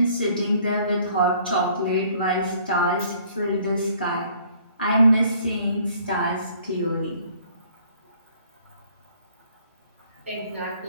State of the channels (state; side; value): inverted; both; correlation -0.58